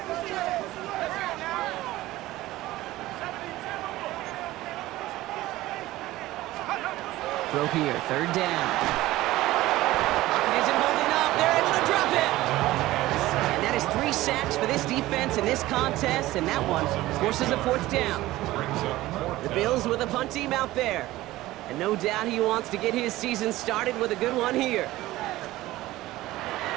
Throw here, 3rd down. Pocket isn't holding up. They're able to drop it. And that is 3 sacks for this defense in this contest, and that one forces a 4th down. The Bills with a punt team out there. And no doubt he wants to get his season started with a good one here.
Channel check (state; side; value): quieter; left; 17.0 dB